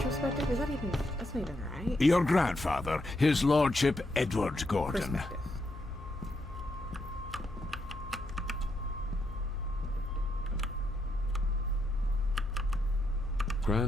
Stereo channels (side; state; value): left; noise; hum, 13 dB below the sound